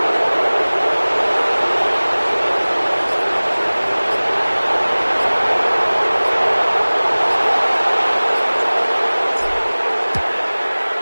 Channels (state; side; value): inverted; both; correlation -1.00